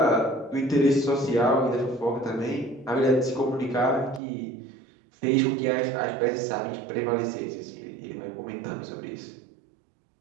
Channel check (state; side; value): drops out; left; at 4.2 s